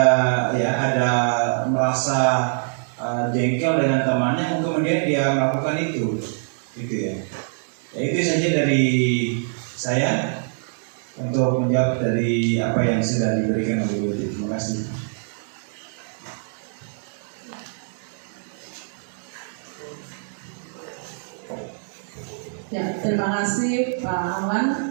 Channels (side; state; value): left; silent; digital silence